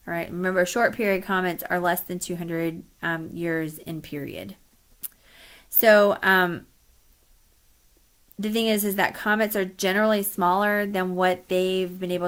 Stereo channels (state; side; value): identical; both; correlation 1.00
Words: All right. Remember, short period comets are less than 200 years in period. So the thing is that comets are generally smaller than what they've been